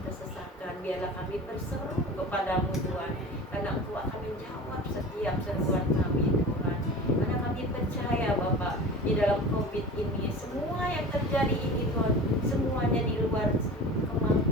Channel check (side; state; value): both; normal; correlation 0.36